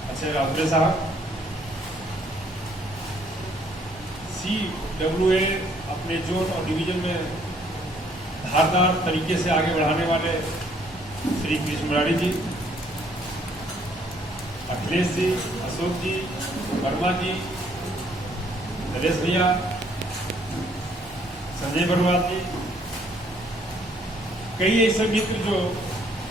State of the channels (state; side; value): normal; both; correlation 0.64